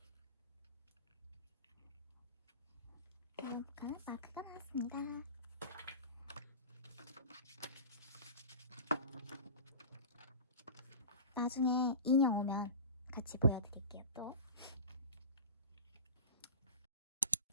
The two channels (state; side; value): inverted; both; correlation -0.33